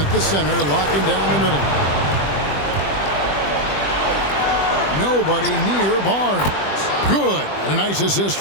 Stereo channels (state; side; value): late; right; 20 ms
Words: the center, locking down the middle. Nobody near Barnes. Good. And a nice assist